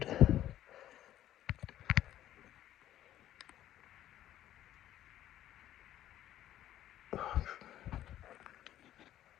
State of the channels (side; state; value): right; quieter; 12.6 dB